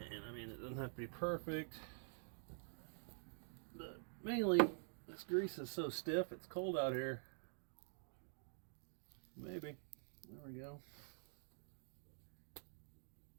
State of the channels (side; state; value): left; silent; digital silence